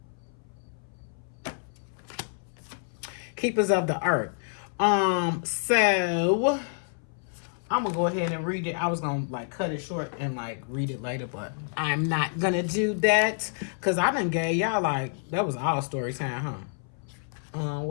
Keepers of the Earth. So I'm gonna go ahead and read it. I was gonna like cut it short and like read it later, but I'm not gonna do that because I done gave y'all like that was all story time, huh?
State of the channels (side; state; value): right; silent; 58 dB below the other